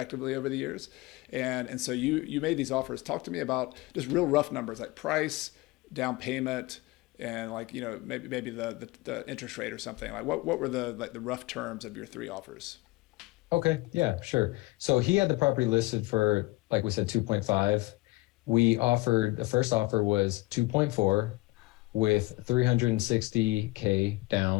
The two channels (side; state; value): right; quieter; 21.1 dB